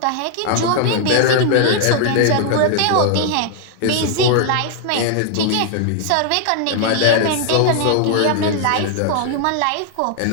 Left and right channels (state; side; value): different; both; correlation 0.00